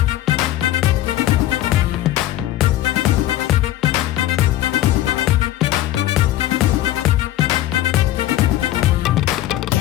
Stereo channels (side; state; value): right; quieter; 14.2 dB